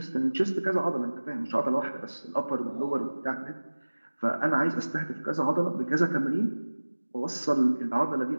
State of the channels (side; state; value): both; inverted; correlation -1.00